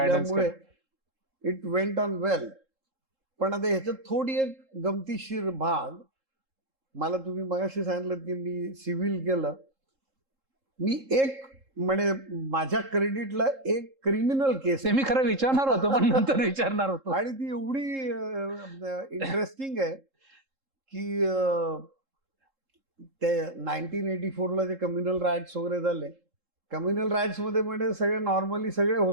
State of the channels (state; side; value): late; left; 3.7 ms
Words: इट वेंट ऑन वेल. पण आता ह्याच्यात थोडी एक गमतीशीर भाग, मला तुम्ही मगाशी सांगितलं की मी सिव्हिल केलं. मी एक म्हणजे माझ्या क्रेडिटला एक क्रिमिनल केस ते मी खरं विचारणार होतो, पण नंतर विचारणार होतो. आणि ती एवढी इंटरेस्टिंग आहे की ते 1984ला जे कम्युनल राईट्स वगैरे झाले, कम्युनल राईट्स मध्ये म्हणजे सगळे नॉर्मली सगळे